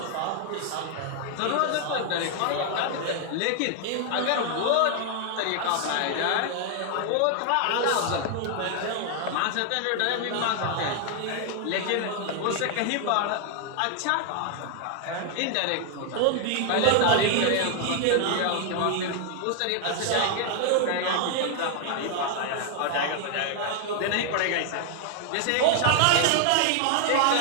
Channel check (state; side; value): different; both; correlation 0.00